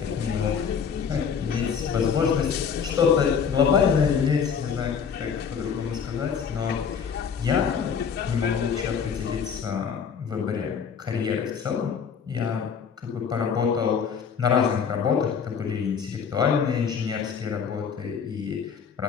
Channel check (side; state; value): right; quieter; 6.7 dB